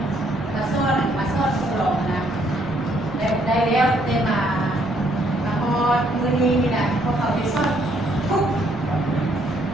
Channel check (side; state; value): right; noise; rumble, 20 dB below the sound